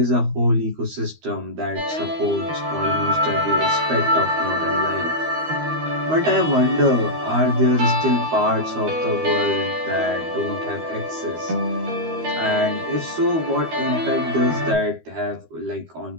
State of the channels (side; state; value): left; late; 13 ms